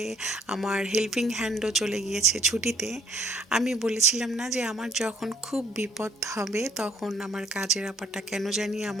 আমার হেল্পিং হ্যান্ডও চলে গিয়েছে ছুটিতে, আমি বলেছিলাম না যে আমার যখন খুব বিপদ হবে তখন আমার কাজের আপাটা কেন জানি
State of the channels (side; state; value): both; normal; correlation 0.63